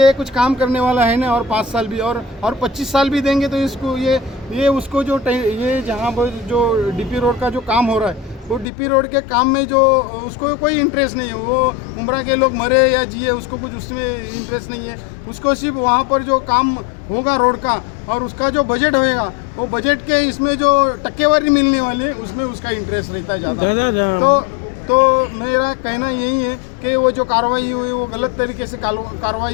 कुछ काम करने वाला है ना, और 5 साल भी और 25 साल भी देंगे तो इसको ये उसको जो ये जहाँ पर जो डीपी रोड का जो काम हो रहा है, वो डीपी रोड के काम में जो उसको कोई इंटरेस्ट नहीं है. वो उमरा के लोग मरे या जिए, उसको कुछ उसमें इंटरेस्ट नहीं है. उसको सिर्फ वहाँ पर जो काम होगा रोड का, और उसका जो बजट होएगा, वो बजट के इसमें जो टक्केवारी मिलने वाली है उसमें उसका इंटरेस्ट रहता है ज़्यादा. तो मेरा कहना यही है कि वो जो कार्रवाई हुई वो गलत तरीके से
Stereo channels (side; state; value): right; drops out; at 8.7 s